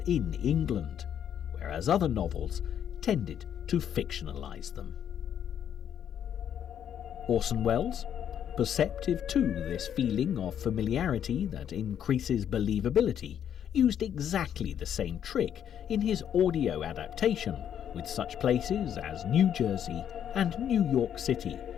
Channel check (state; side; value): quieter; right; 9.3 dB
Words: England, whereas other novels tended to fictionalise them. Orson Welles, perceptive to this feeling of familiarity that increases believability, used exactly the same trick in his audio adaptation, with such places as New Jersey and New York City